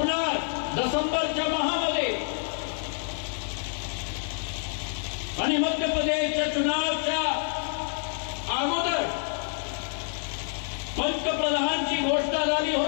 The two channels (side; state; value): right; silent; digital silence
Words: डिसेंबरच्या महिन्यामध्ये. आणि मध्य प्रदेशच्या चुनावच्या अगोदर पंतप्रधानची घोषणा झाली